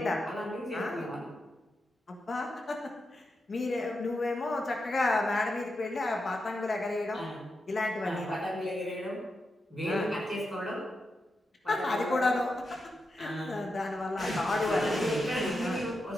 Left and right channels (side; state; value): both; normal; correlation 0.87